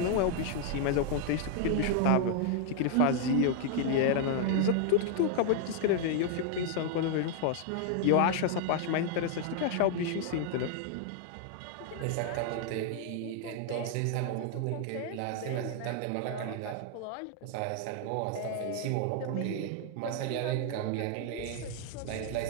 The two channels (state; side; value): different; both; correlation 0.00